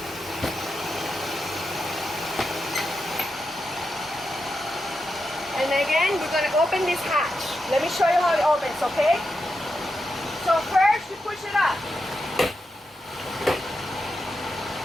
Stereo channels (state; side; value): normal; both; correlation 0.87